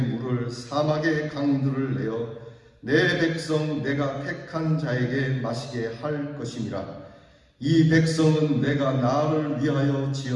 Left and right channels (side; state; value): both; identical; correlation 1.00